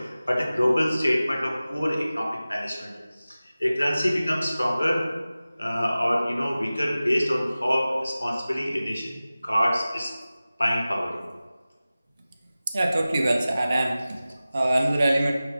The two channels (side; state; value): both; inverted; correlation -0.96